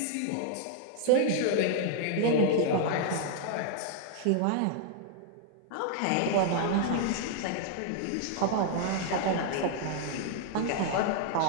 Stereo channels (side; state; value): both; different; correlation -0.01